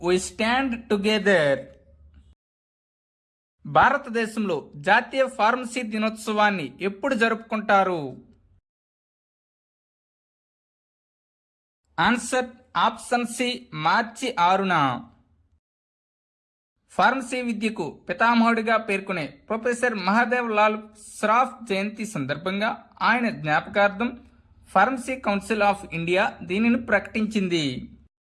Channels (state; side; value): identical; both; correlation 1.00